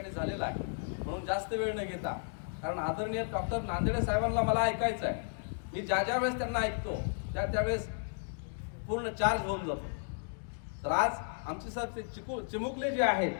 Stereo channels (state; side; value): silent; right; digital silence